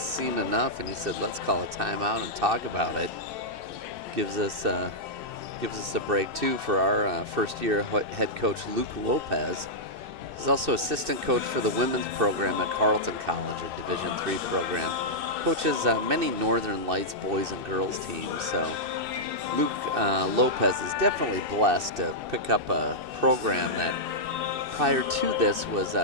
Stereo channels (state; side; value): late; left; 2.6 ms